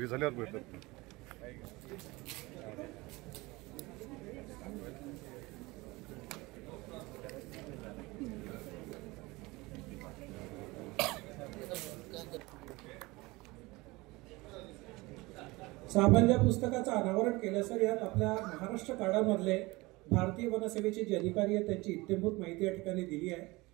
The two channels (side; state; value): left; quieter; 22.4 dB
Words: झाल्यावर भेटतात. सामान्य पुस्तकाचं अनावरण केलं सर. यात आपल्या महाराष्ट्र कार्डामधले भारतीय वनसेवेचे जे अधिकारी आहेत त्यांची इत्थंभूत माहिती या ठिकाणी दिली आहे.